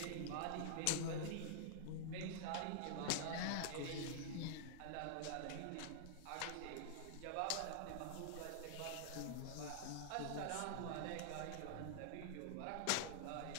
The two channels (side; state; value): both; different; correlation -0.01